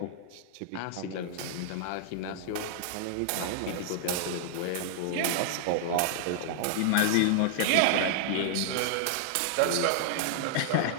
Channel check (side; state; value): both; different; correlation -0.01